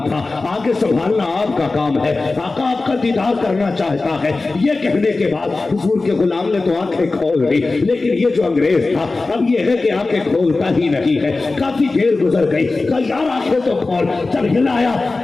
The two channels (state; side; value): quieter; right; 3.5 dB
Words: تھا, آگے سنبھالنا آپ کا کام ہے, آقا آپ کا دیدار کرنا چاہتا ہے. یہ کہنے کے بعد حضور کے غلام نے تو آنکھیں کھول دی, لیکن یہ جو انگریز تھا اب یہ ہے کہ آنکھیں کھولتا ہی نہیں ہے. کافی دیر گزر گئی. کہا یار آنکھیں تو کھول. جب ہلایا